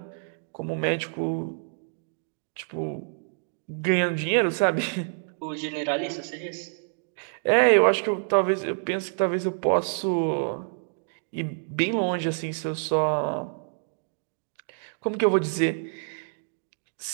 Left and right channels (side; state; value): left; silent; digital silence